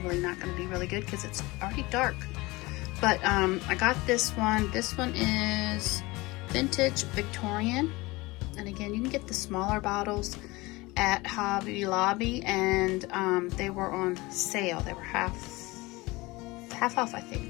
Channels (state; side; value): quieter; right; 22.2 dB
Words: not going to be really good because it's already dark. But I got this one. This one is Vintage Victorian, and again, you can get the smaller bottles at Hobby Lobby, and they were on sale. They were half off, I